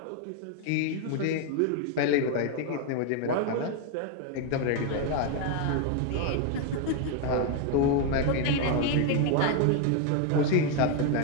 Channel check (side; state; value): both; different; correlation 0.01